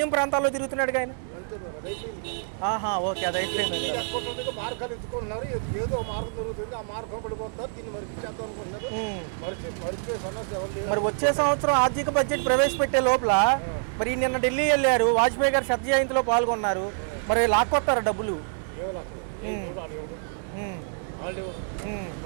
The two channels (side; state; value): left; silent; digital silence